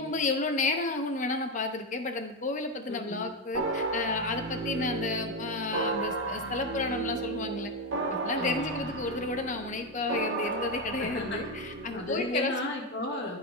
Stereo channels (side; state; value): both; normal; correlation 0.10